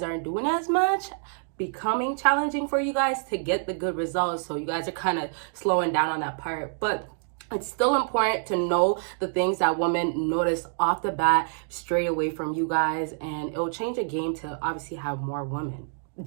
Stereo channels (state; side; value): silent; left; digital silence